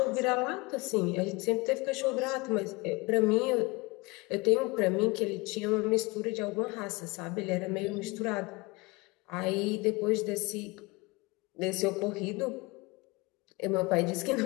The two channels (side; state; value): right; quieter; 25.4 dB